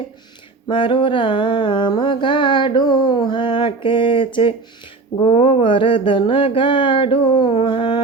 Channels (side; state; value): left; quieter; 3.9 dB